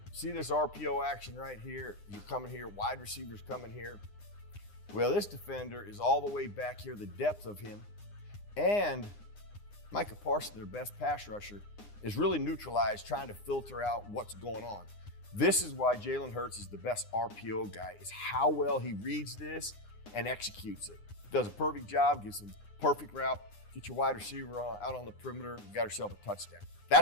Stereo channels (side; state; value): right; late; 9.8 ms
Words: See this RPO action right here? You're coming here, wide receiver's coming here. Well, this defender is all the way back here, the depth of him. And Micah Parsons, their best pass rusher, is really neutralized, trying to filter out what's going on. This is why Jalen Hurts is the best RPO guy, is how well he reads this and executes it. Does a perfect job, gives him perfect route, get your wide receiver out on the perimeter, you got yourself a touchdown.